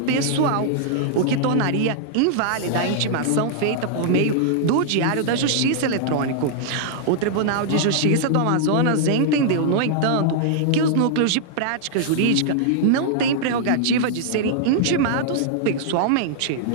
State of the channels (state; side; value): different; both; correlation -0.01